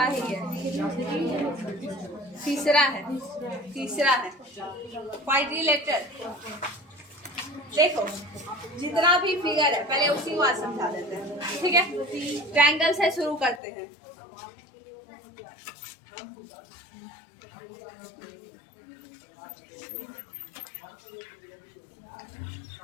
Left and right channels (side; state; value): right; drops out; at 13.6 s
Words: ही है, तीसरा है क्वाड्रिलेटरल। देखो जितना भी फिगर है पहले उसी को आज समझा देते हैं, ठीक है। ट्रायंगल से शुरू करते हैं।